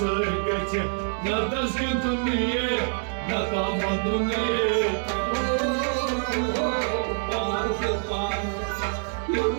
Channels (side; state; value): left; silent; 61 dB below the other